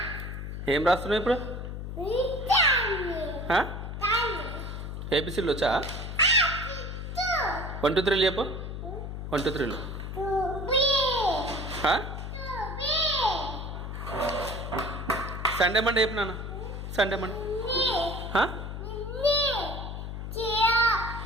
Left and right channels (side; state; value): left; noise; hum, 6 dB below the sound